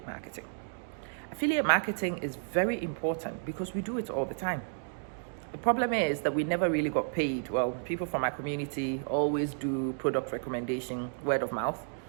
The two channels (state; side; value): silent; left; digital silence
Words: marketing. Affiliate marketing is very important because we do it all the time. The problem is that we never really got paid. Well, people from our community always do product recommendation, word of mouth,